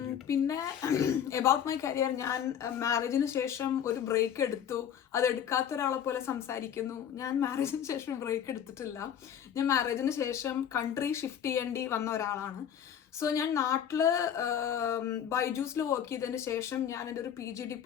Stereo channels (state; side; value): quieter; right; 9.1 dB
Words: പിന്നെ എബൌട്ട് മൈ കരിയർ, ഞാൻ മാരേജിന് ശേഷം ഒരു ബ്രേക്ക് എടുത്തു. അത് എടുക്കാത്ത ഒരാളെ പോലെ സംസാരിക്കുന്നു. ഞാൻ മാരേജിന് ശേഷം ബ്രേക്ക് എടുത്തിട്ടില്ല. ഞാൻ മാരേജിന് ശേഷം കൺട്രി ഷിഫ്റ്റ് ചെയ്യേണ്ടി വന്ന ഒരാളാണ്. സോ ഞാൻ നാട്ടിൽ ബൈജൂസിൽ വർക്ക് ചെയ്തതിന് ശേഷം ഞാൻ എൻ്റെ ഒരു PG